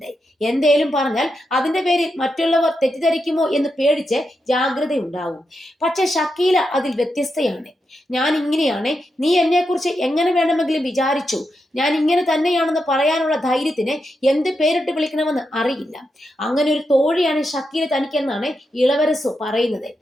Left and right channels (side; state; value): both; normal; correlation 0.86